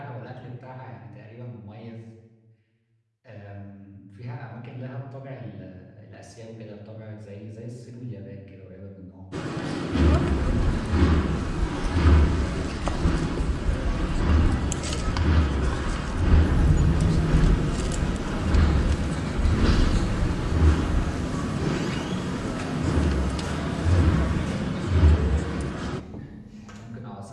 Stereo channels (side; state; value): both; identical; correlation 1.00